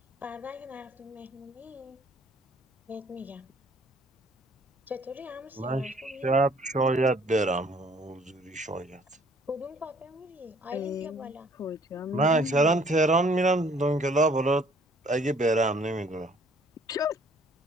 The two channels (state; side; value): normal; both; correlation 0.59